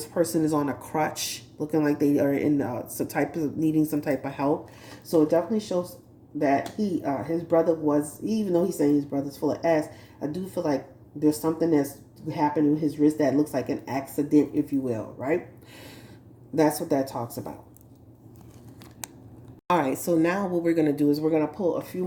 person is on a crutch, looking like they are in needing some type of help. So it definitely shows that his brother was, even though he's saying his brother's full of ass, I do feel like there's something that's happening with his wrist that looks like an accident, if you will, right? That's what that talks about. All right, so now what we're going to do is we're going to pull a few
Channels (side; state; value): both; identical; correlation 1.00